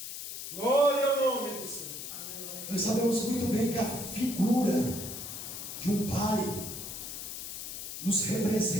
Glória ao nome do Senhor. Nós sabemos muito bem que a figura de um Pai nos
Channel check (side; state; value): left; noise; hiss, 8 dB below the sound